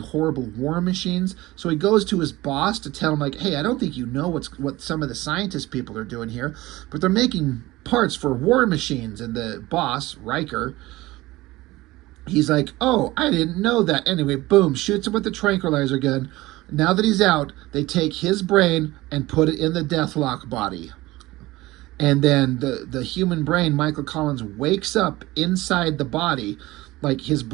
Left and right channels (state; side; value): quieter; left; 19.0 dB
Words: war machines. So he goes to his boss to tell him, like, hey, I don't think you know what some of the scientist people are doing here, but they're making parts for war machines. And the boss, Riker, he's like, oh, I didn't know that. Anyway, boom, shoots him with the tranquilizer gun. Now that he's out, they take his brain and put it in the Deathlok body. And then the human brain, Michael Collins, wakes up inside the body. Like, his